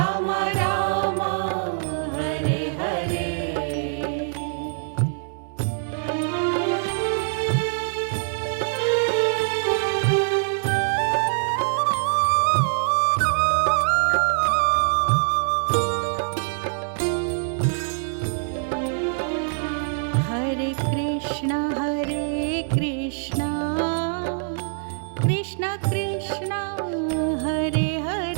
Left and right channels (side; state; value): left; silent; digital silence